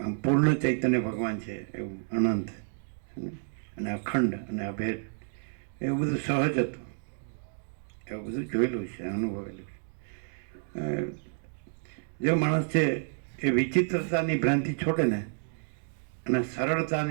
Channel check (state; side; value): silent; left; 58 dB below the other